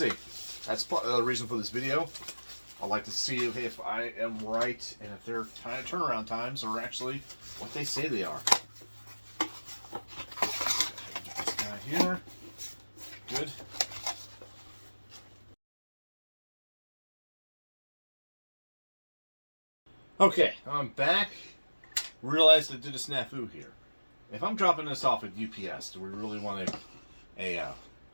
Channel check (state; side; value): inverted; both; correlation -1.00